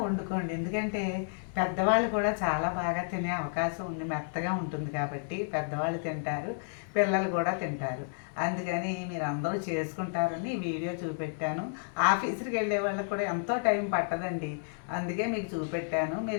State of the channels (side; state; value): right; silent; 57 dB below the other